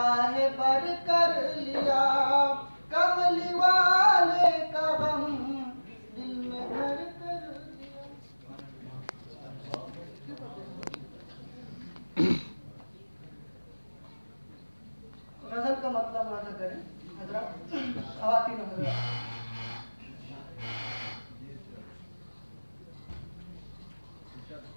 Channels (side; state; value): both; inverted; correlation -1.00